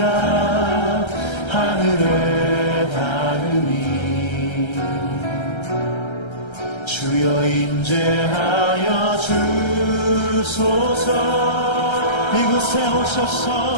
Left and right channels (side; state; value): right; late; 1.3 ms